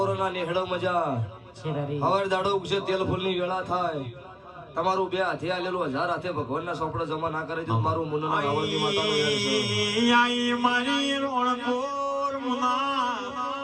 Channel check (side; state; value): both; identical; correlation 1.00